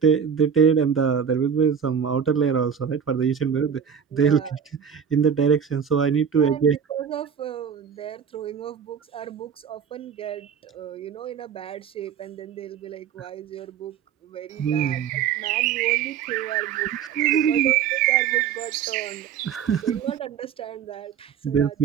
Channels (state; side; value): quieter; left; 7.6 dB